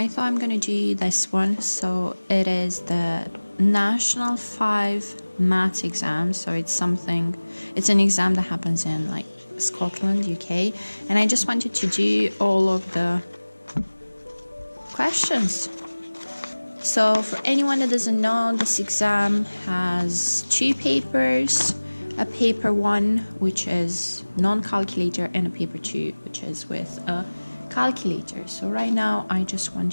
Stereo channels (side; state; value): both; inverted; correlation -1.00